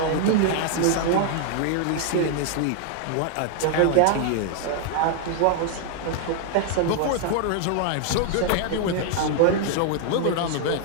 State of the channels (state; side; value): different; both; correlation 0.00